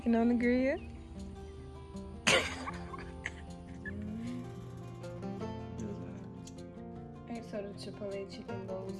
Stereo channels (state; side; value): identical; both; correlation 1.00